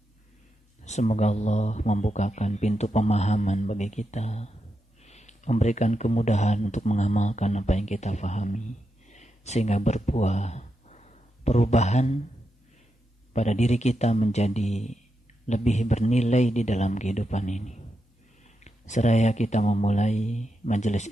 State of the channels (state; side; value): normal; both; correlation 0.86